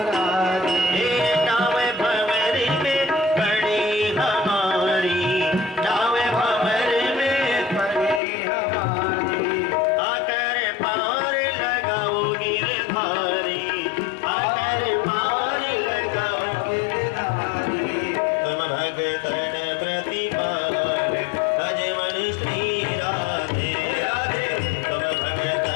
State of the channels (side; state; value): right; drops out; at 8.2 s